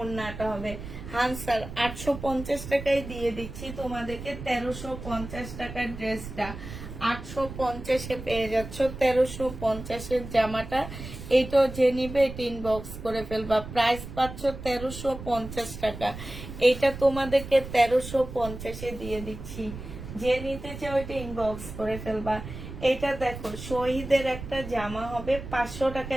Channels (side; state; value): right; noise; rumble, 11 dB below the sound